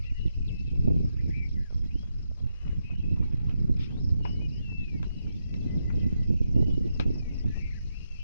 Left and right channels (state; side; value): inverted; both; correlation -0.84